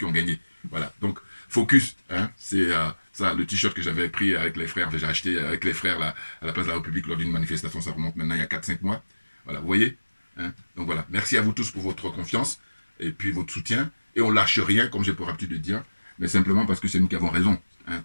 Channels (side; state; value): both; inverted; correlation -1.00